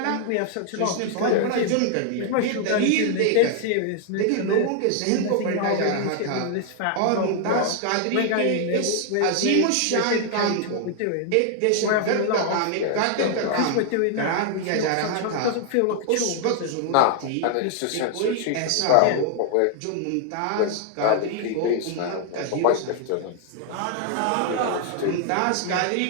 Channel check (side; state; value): both; different; correlation 0.00